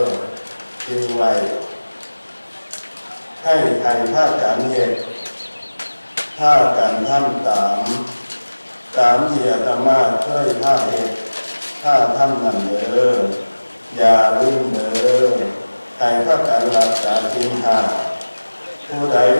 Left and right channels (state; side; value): inverted; both; correlation -1.00